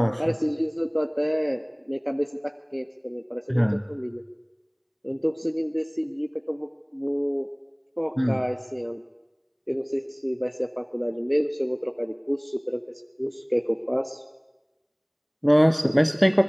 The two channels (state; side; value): identical; both; correlation 1.00